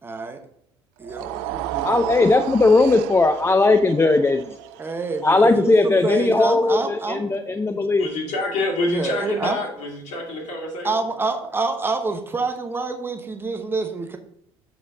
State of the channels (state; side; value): normal; both; correlation 0.79